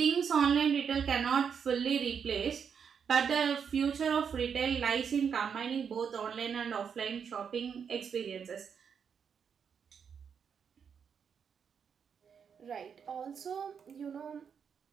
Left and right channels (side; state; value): left; quieter; 7.0 dB